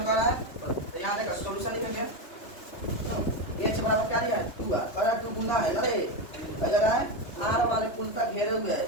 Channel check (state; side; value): late; right; 3.3 ms